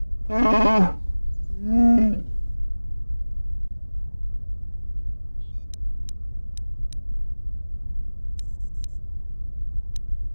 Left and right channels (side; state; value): both; inverted; correlation -1.00